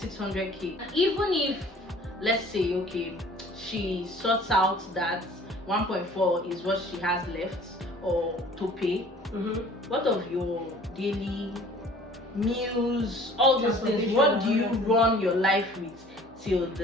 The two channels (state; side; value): normal; both; correlation 0.50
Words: And even if, let's say, okay, she sorts out that 1.4 is what she has left or to pay. What of your daily meals, all those things? What do you run your life with till